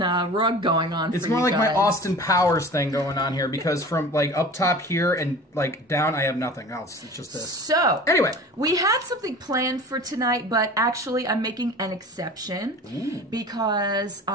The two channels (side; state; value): both; normal; correlation 0.39